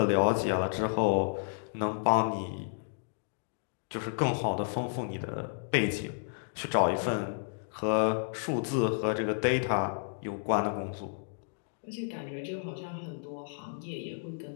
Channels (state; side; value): silent; right; digital silence